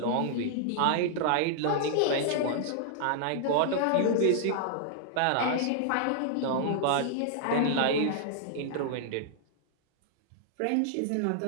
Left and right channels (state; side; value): different; both; correlation -0.01